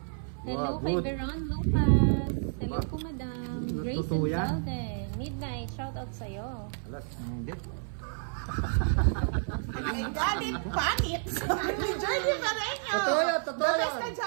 Hello Wow, kay good. Veron Lucas. Hello po, Madam. Grace Totoo yan? Elizalde. Midnight, shoutout sa'yo. Alas. Hindi. Ay, galit, pangit. Sabi ni Journey Pareño. Totoo yan, totoo The best yan. ka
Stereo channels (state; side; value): silent; left; 58 dB below the other